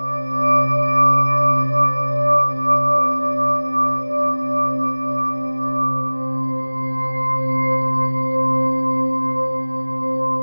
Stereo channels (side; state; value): both; inverted; correlation -1.00